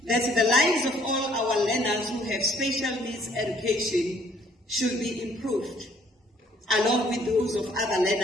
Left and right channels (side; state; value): both; normal; correlation 0.62